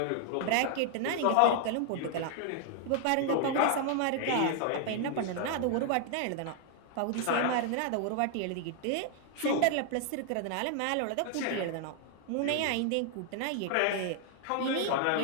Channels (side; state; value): both; different; correlation 0.00